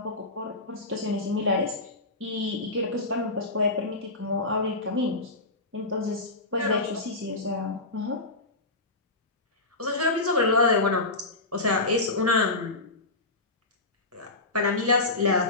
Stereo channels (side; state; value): right; quieter; 3.0 dB